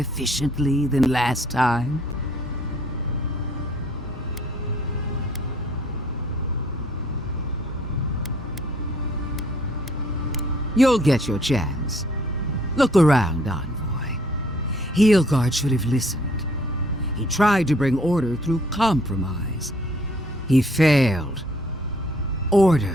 than last time? You'll get your chance. Look around, Envoy. Heelguard should have listened. He tried to bring order through compromise. He failed.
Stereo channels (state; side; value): normal; both; correlation 0.61